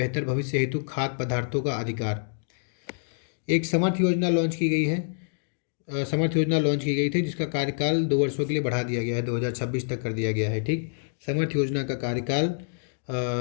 भविष्य हेतु खाद्य पदार्थों का अधिकार। एक समर्थ योजना लॉन्च की गई है। समर्थ योजना लॉन्च की गई थी, जिसका कार्यकाल 2 वर्षों के लिए बढ़ा दिया गया है, 2026 तक कर दिया गया है। ठीक, समर्थ योजना का कार्यकाल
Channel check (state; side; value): silent; right; digital silence